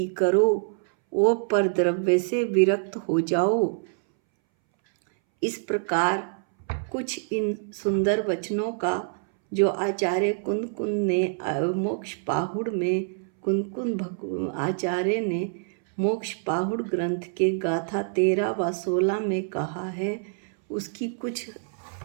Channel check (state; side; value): silent; left; 61 dB below the other